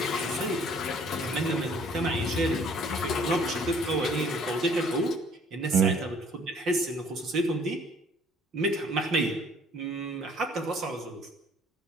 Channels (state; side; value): normal; both; correlation 0.57